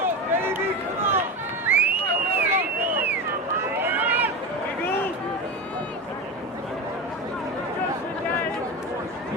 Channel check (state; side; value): normal; both; correlation 0.22